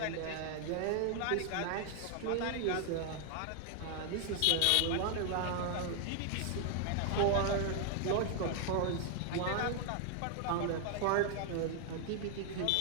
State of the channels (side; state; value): both; different; correlation 0.00